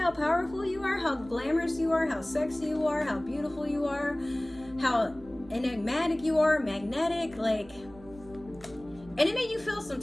powerful you are, how glamorous you are, how sexy you are, how beautiful you are, how enigmatic you are, magnetic, and it made you feel some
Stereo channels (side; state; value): right; noise; hum, 21 dB below the sound